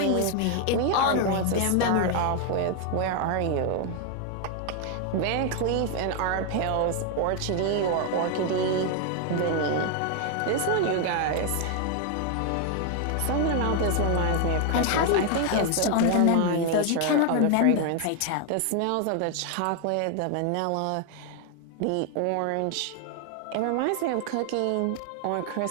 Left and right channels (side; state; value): both; different; correlation 0.00